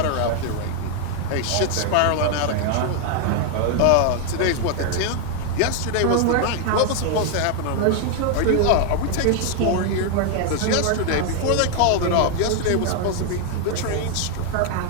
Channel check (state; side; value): different; both; correlation 0.00